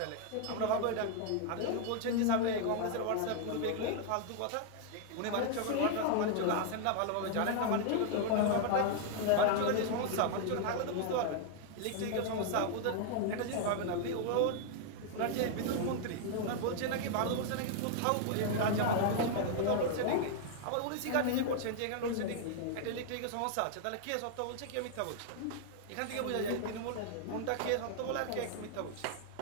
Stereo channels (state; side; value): different; both; correlation 0.00